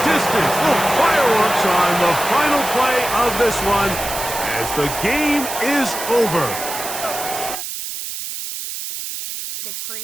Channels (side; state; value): right; noise; hiss, 7 dB below the sound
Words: distance. Little fireworks on the final play of this one as the game is over.